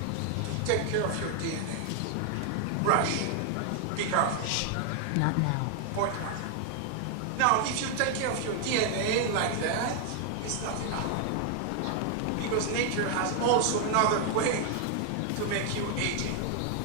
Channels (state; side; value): different; both; correlation 0.00